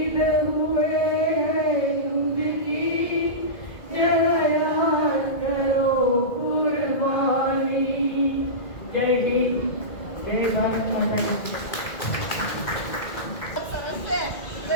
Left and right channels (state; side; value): late; right; 2.0 ms